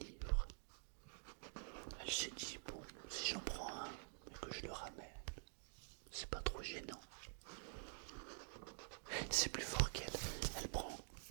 elle s'est dit, bon, si j'en prends un et que je le ramène, c'est pas trop gênant. C'est plus fort qu'elle. Elle prend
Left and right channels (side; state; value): left; silent; digital silence